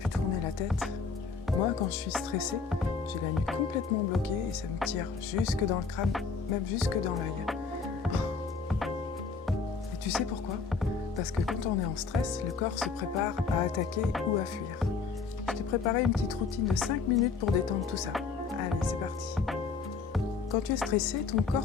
tourner la tête. Moi, quand je suis stressée, j'ai la nuque complètement bloquée et ça me tire jusque dans le crâne, même jusque dans l'œil. Et tu sais pourquoi? Parce que quand on est en stress, le corps se prépare à attaquer ou à fuir. Je t'ai préparé une petite routine de 5 minutes pour détendre tout ça. Allez, c'est parti. Quand tu es stressé, ton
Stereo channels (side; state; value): right; quieter; 5.1 dB